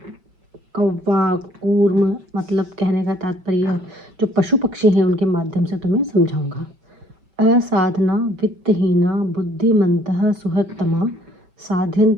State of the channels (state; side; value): late; left; 5.8 ms